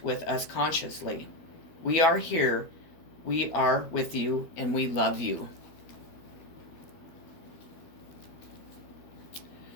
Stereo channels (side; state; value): right; late; 12 ms